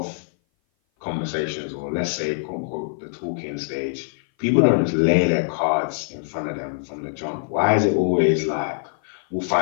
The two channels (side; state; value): right; silent; 57 dB below the other